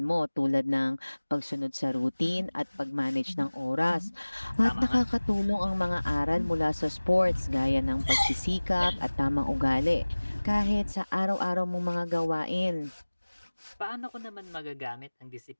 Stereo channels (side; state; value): both; inverted; correlation -1.00